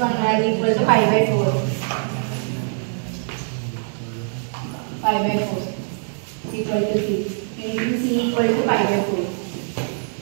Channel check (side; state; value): left; silent; 64 dB below the other